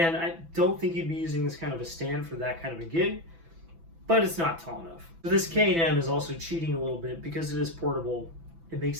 I don't think you'd be using this kind of a stand for that kind of a gig, but it's not tall enough. So this K&M is also cheating a little bit because it is portable. It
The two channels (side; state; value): left; late; 6.0 ms